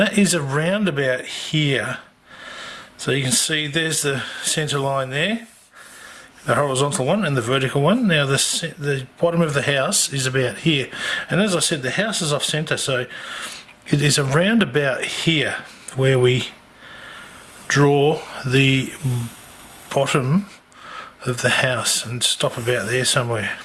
is around about here. So you can see there's the centre line there, the horizontal one and the vertical one. Now the bottom of the house is about here, and as I said, the house is off centre, so it is around about here where we draw the bottom of the house and stop about there somewhere.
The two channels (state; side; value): identical; both; correlation 1.00